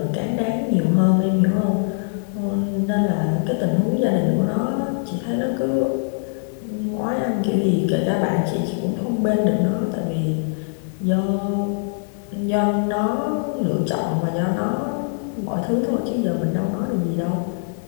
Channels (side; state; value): right; silent; digital silence